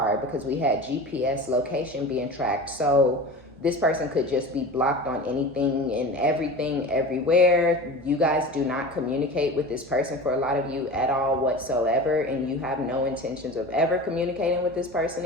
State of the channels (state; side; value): normal; both; correlation 0.33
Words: because we had GPS location being tracked. So this person could just be blocked on anything and everything everywhere. You guys do not communicate with this person for a lot of you at all whatsoever, and you have no intentions of ever communicating with this person